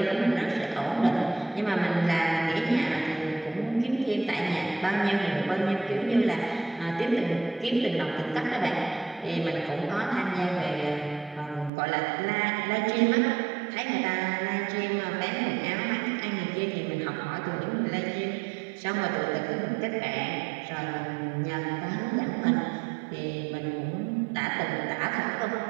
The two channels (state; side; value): drops out; left; at 11.7 s